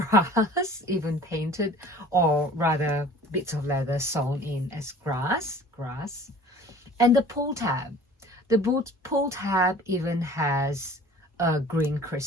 even painted, or rather bits of leather sewn in as grass. And the pull tab, the pull tab even has a green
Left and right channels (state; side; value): normal; both; correlation 0.46